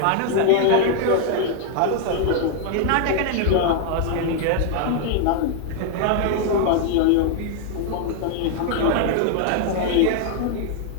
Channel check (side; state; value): both; different; correlation 0.00